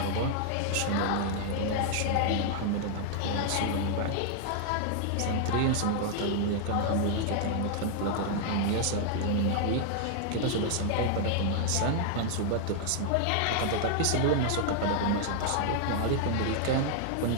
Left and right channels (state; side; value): different; both; correlation -0.01